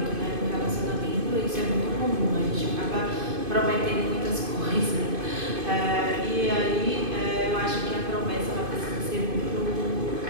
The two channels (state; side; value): late; left; 2.5 ms